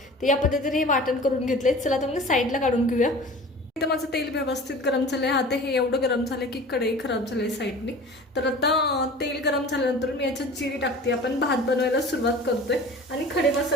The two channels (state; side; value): normal; both; correlation 0.40